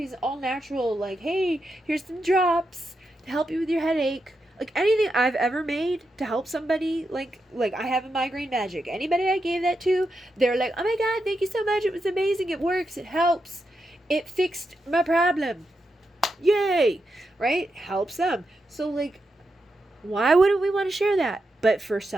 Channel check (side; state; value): both; normal; correlation 0.86